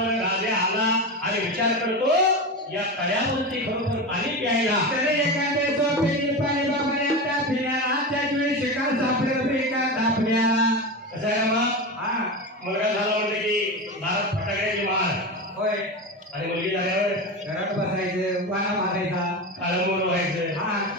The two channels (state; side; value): normal; both; correlation 0.22